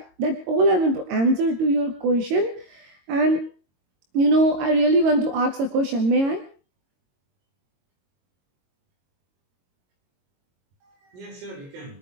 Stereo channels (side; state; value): left; late; 22 ms